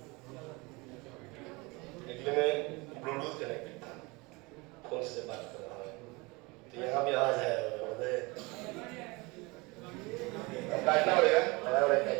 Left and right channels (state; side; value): quieter; left; 25.4 dB